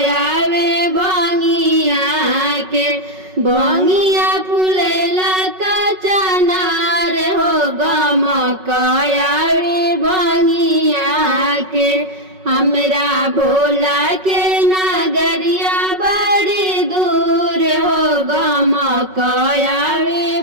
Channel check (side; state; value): left; late; 5.4 ms